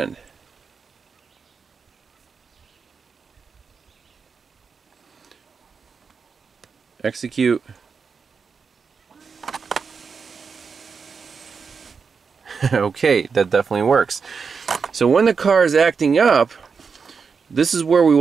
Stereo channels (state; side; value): quieter; left; 5.5 dB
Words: Execute. Okay, that definitely works. So when the car is acting up, this is where we